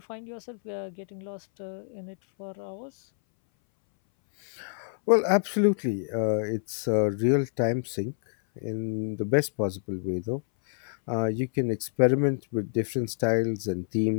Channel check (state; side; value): silent; right; 60 dB below the other